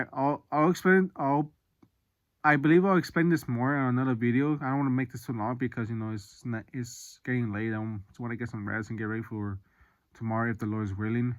explain. I believe I'll explain this more on another video. I don't want to make this too long, because it's getting late. I just want to get some rest and get ready for tomorrow, if the Lord is willing.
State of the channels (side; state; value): both; identical; correlation 1.00